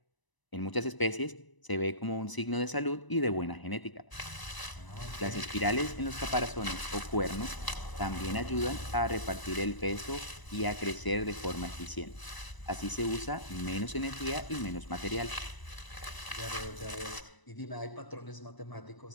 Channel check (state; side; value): late; right; 1.0 ms